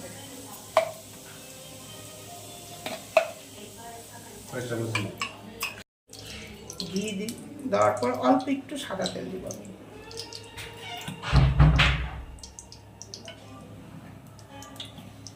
ঘি দেওয়ার পর অল্প একটু সাদা তেল দিব আমি।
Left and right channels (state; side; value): identical; both; correlation 1.00